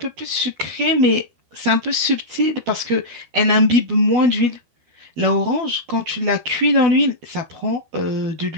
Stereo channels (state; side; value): late; left; 12 ms